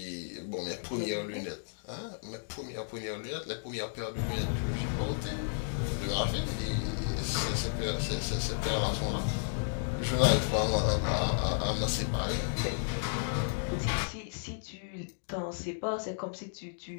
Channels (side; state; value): right; silent; digital silence